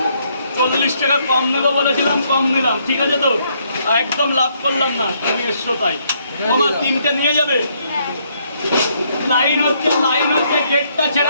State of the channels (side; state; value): both; inverted; correlation -0.71